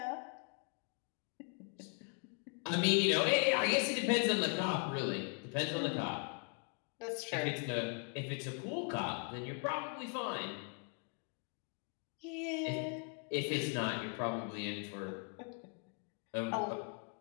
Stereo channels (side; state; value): right; quieter; 39.8 dB